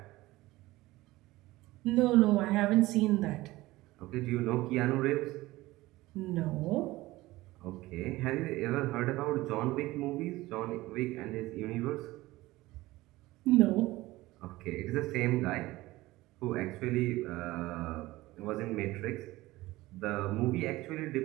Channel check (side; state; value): left; quieter; 18.7 dB